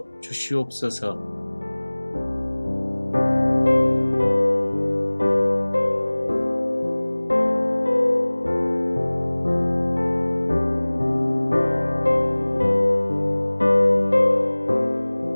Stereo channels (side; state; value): both; inverted; correlation -1.00